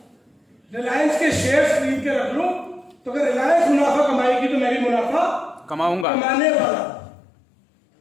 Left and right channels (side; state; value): right; drops out; at 6.1 s